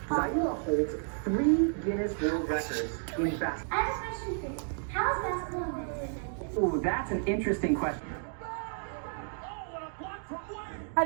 Zaira holds 3 Guinness World Records in basketball. I have a question for you. How is basketball invented? Ooh, that's an interesting question. How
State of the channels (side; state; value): left; silent; 56 dB below the other